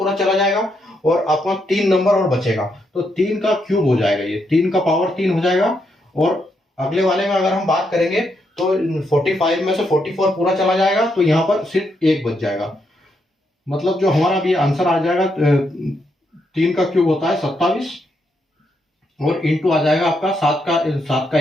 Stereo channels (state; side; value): normal; both; correlation 0.79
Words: चला जाएगा, और अपना 3 नंबर और बचेगा, तो 3 का क्यूब हो जाएगा, ये 3 का पावर 3 हो जाएगा। और अगले वाले में अगर हम बात करेंगे तो 45 में से 44 पूरा चला जाएगा, तो यहाँ पर सिर्फ 1 बच जाएगा। मतलब जो हमारा भी आंसर आ जाएगा 3 का क्यूब होता है 27, और इंटू आ जाएगा आपका 7 का